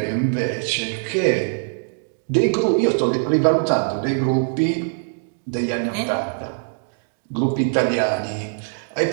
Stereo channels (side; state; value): left; silent; digital silence